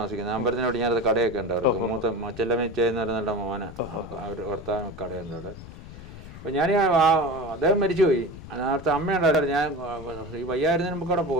അമ്പലത്തിനോട് ഞാനത് കടയൊക്കെ ഉണ്ട് അവർക്ക്. മൂത്ത ചെല്ലമ്മച്ചെന്ന് പറയുന്ന മോഹന് അവർ ഭർത്താവ് കടയുണ്ട് അവിടെ. അപ്പോൾ ഞാൻ അദ്ദേഹം മരിച്ചുപോയി. നേരത്തെ അമ്മയുണ്ടായിരുന്നു. ഞാൻ ഈ വയ്യായിരുന്നതിന് നമുക്ക് അവിടെ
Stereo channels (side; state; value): left; noise; rumble, 15 dB below the sound